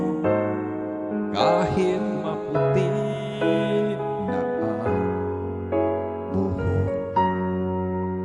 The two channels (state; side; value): identical; both; correlation 1.00